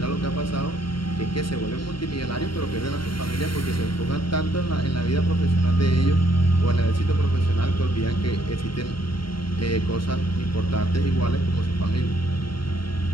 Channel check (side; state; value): right; late; 0.73 ms